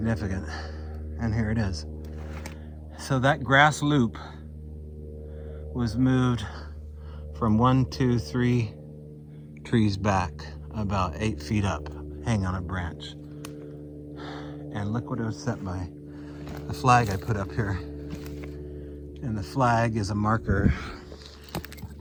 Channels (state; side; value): identical; both; correlation 1.00